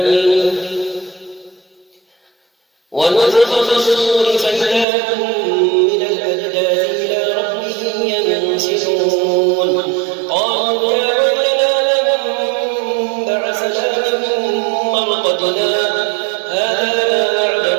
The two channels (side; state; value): left; drops out; at 4.9 s